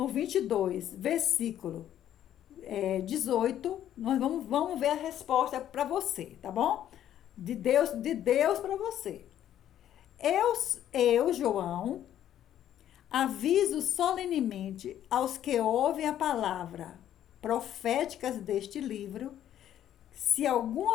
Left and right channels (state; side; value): quieter; right; 11.2 dB